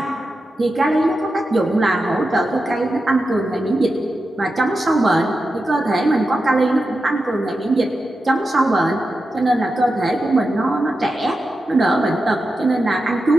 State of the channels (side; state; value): both; normal; correlation 0.90